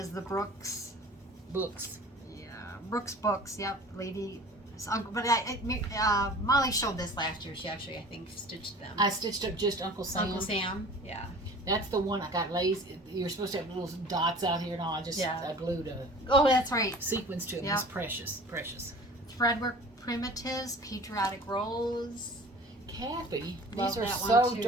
the Brooks. Books. Yeah, Brooks Books. Yep, lady. But Molly showed this last year. She actually, I think, stitched them. I stitched up just Uncle Sam. Uncle Sam. Yeah. That's the one I got lazy. You're supposed to have little dots out here and all. I glued a Oh, that's right. sequence to it. Yep. It's precious, precious. Threadwork Primitives, Patriotic Rose. Kathy, Love these are that one, so too.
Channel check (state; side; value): normal; both; correlation 0.44